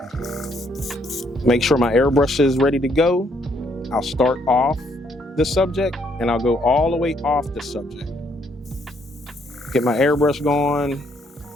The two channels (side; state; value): both; normal; correlation 0.70